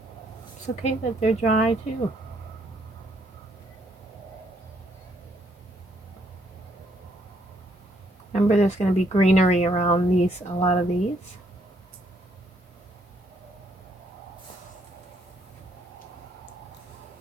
It's okay that they're dry too. Remember, there's going to be greenery around a lot of these.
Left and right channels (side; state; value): both; normal; correlation 0.70